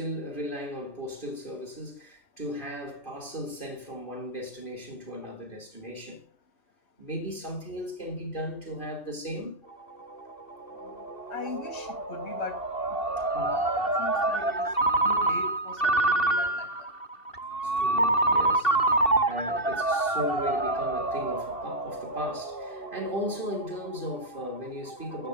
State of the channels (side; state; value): right; late; 2.5 ms